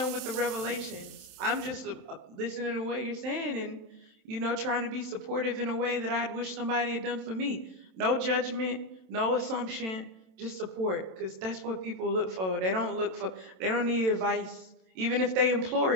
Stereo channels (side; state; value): left; late; 27 ms